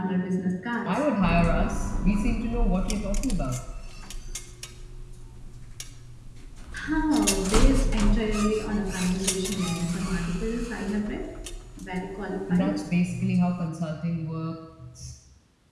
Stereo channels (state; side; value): identical; both; correlation 1.00